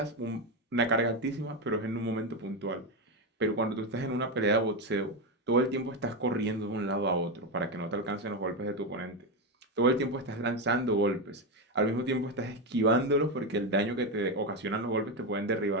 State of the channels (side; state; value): both; normal; correlation 0.11